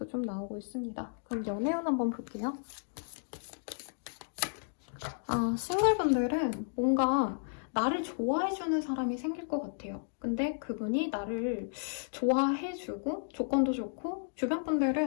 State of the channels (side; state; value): right; silent; digital silence